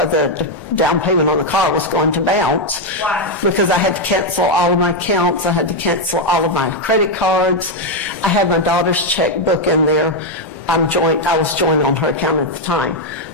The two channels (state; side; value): normal; both; correlation 0.02